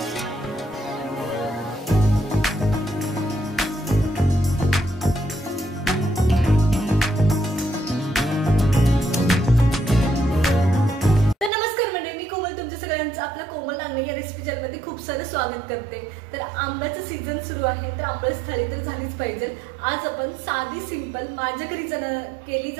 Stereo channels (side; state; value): left; drops out; at 11.5 s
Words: आपल्या कोमल नांगणे या रेसिपी चॅनलमध्ये खूप सारं स्वागत करते। तर आंब्याचं सीझन सुरू आहे, तर आमरस थाळी तर झालीच पाहिजे। आज आपण साधी सिंपल माझ्या घरी केली